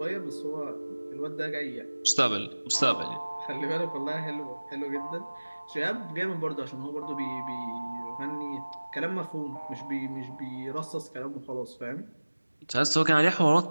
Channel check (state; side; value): inverted; both; correlation -1.00